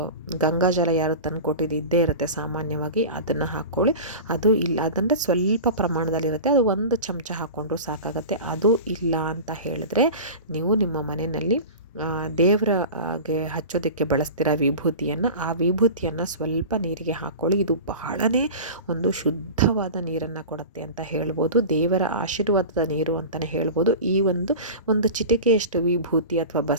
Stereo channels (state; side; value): inverted; both; correlation -0.32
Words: ಗಂಗಾ ಜಲ ಯಾರು ತಂದು ಕೊಟ್ಟಿದ್ದು ಇದ್ದೇ ಇರುತ್ತೆ ಸಾಮಾನ್ಯವಾಗಿ, ಅದನ್ನು ಹಾಕ್ಕೊಳ್ಳಿ. ಅದು ಇಲ್ಲ ಅದಂದರೆ ಸ್ವಲ್ಪ ಪ್ರಮಾಣದಲ್ಲಿರುತ್ತೆ, ಅದು 1 ಚಮಚ ಹಾಕ್ಕೊಂಡ್ರೂ ಸಾಕಾಗತ್ತೆ. ಅದು ಇಲ್ಲ ಅಂತ ಹೇಳಿದ್ರೆ, ನೀವು ನಿಮ್ಮ ಮನೆಯಲ್ಲಿ ದೇವರಿಗೆ ಹಚ್ಚೋದಕ್ಕೆ ಬಳಸ್ತೀರ ವಿಭೂತಿಯನ್ನು, ಆ ವಿಭೂತಿಯನ್ನು ಸ್ವಲ್ಪ ನೀರಿಗೆ ಹಾಕ್ಕೊಳ್ಳಿ. ಇದು ಬಹಳನೇ ಒಂದು ಶುದ್ಧವಾದ ನೀರನ್ನು ಕೊಡುತ್ತೆ ಅಂತ ಹೇಳ್ಬೋದು, ದೇವರ ಆಶೀರ್ವಾದದ ನೀರು ಅಂತಲೇ ಹೇಳ್ಬೋದು. ಈ ಒಂದು ಚಿಟಿಕೆಯಷ್ಟು ವಿಭೂತಿ ಅಥವಾ